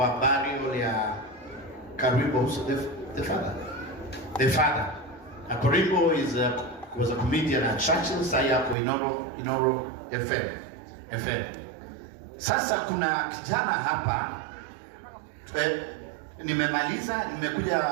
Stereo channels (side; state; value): left; drops out; at 8.8 s